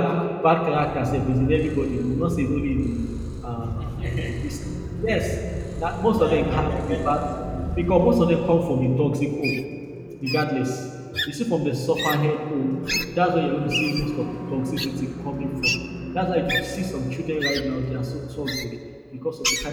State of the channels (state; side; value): identical; both; correlation 1.00